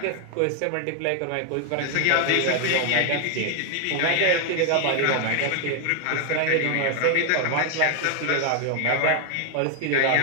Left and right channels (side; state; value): both; different; correlation 0.00